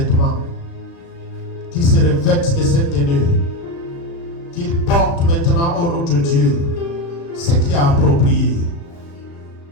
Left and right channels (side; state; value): right; late; 36 ms